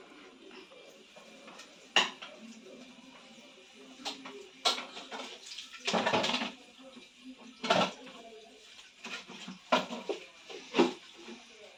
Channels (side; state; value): both; identical; correlation 1.00